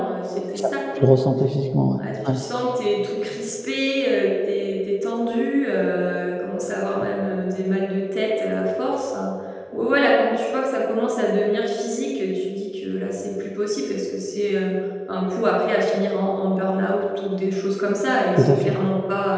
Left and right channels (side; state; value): both; identical; correlation 1.00